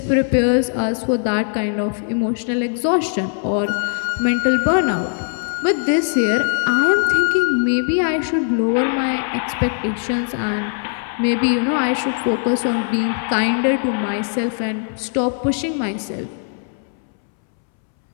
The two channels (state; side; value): silent; right; 66 dB below the other